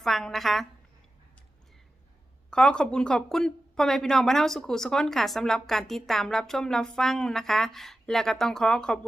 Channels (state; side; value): normal; both; correlation 0.93